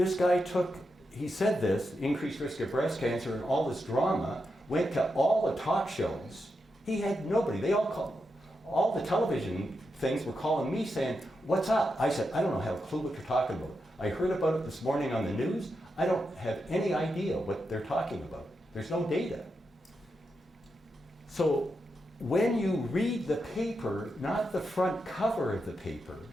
guy he said this, increased risk of breast cancer and all this drama, went to all the talk shows. He had nobody. All the television things were calling me saying, "What's up?" I said, "I don't have a clue what you're talking about. I heard about it this morning on the news. I don't have any idea what they're talking about. There's no data." So when you read the paper, not the front cover of the paper,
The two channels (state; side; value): normal; both; correlation 0.86